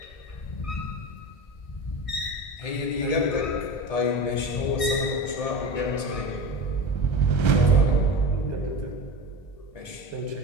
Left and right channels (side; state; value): right; late; 1.7 ms